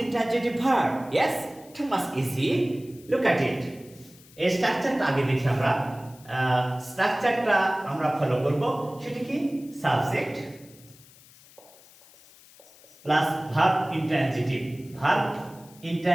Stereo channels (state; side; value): noise; left; hiss, 24 dB below the sound